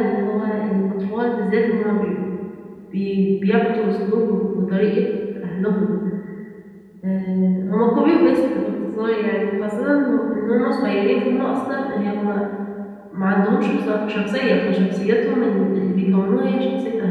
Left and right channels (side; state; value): both; identical; correlation 1.00